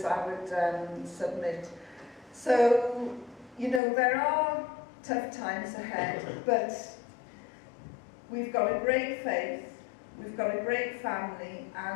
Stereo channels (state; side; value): drops out; right; at 3.8 s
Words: I would submit. So, you know, there are tough times ahead, but we've got a great faith, we've got a great family,